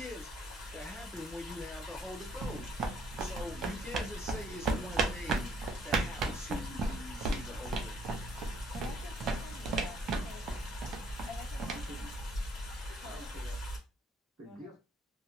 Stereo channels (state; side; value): normal; both; correlation 0.66